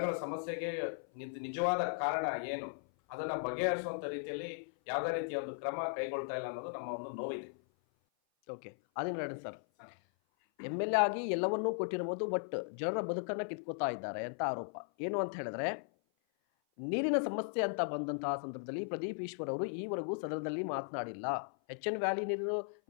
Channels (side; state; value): right; silent; 53 dB below the other